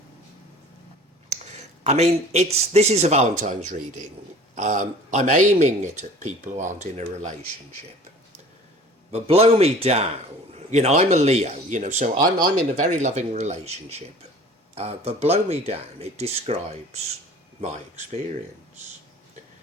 I mean, this is a Valentine's reading. I'm aiming it at people who aren't in a relationship. But blow me down. You know, I'm a Leo, you know, so I'm in a very loving relationship. But blow me down, it describes my experience.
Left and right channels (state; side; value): normal; both; correlation 0.45